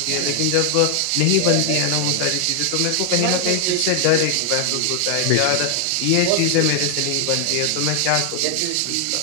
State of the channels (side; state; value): both; different; correlation 0.00